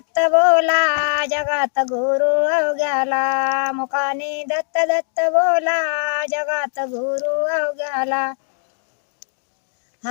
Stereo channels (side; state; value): right; silent; digital silence